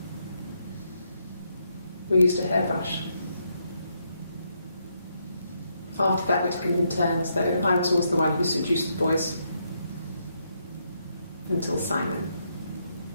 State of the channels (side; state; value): both; inverted; correlation -0.77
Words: We used a hairbrush. After that, we took it in turns, though. I was always the one who seduced the boys. Until Simon.